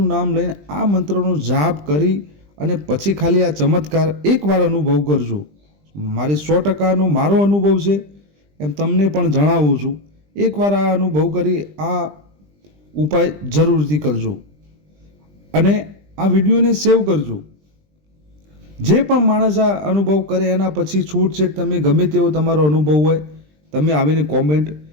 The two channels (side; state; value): left; late; 20 ms